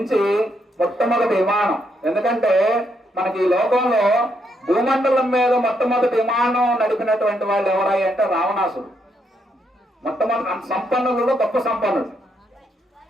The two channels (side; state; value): both; normal; correlation 0.77